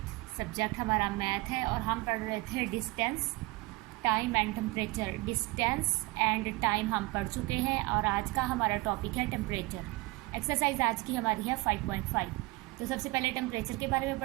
सब्जेक्ट हमारा मैथ है और हम पढ़ रहे थे distance, time and temperature. Distance and time हम पढ़ चुके हैं और आज का हमारा टॉपिक है टेम्परेचर। एक्सरसाइज आज की हमारी है 5.5। तो सबसे पहले टेम्परेचर के बारे में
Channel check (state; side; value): quieter; left; 22.4 dB